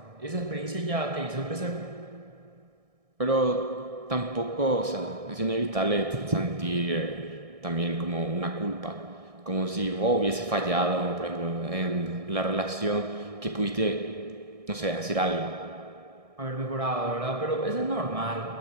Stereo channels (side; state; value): left; late; 1.6 ms